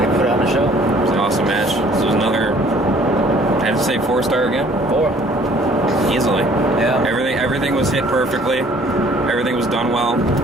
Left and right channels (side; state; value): both; normal; correlation 0.56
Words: put on a show. It's an awesome match. This was another, I have to say 4-star again? 4. Easily. Yeah. Everything was hit perfectly. Everything was done well.